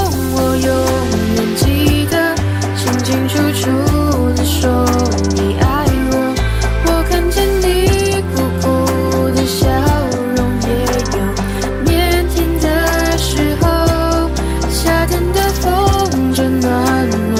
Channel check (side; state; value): both; identical; correlation 1.00